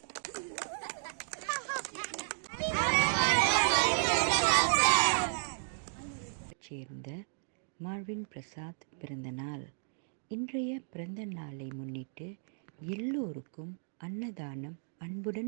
சேர்ந்த மார்வின் பிரசாத் பிறந்த நாள். இன்றைய பிறந்த நாளை முன்னிட்டு எல்லோருக்கும் அன்னதானம்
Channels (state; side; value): silent; left; digital silence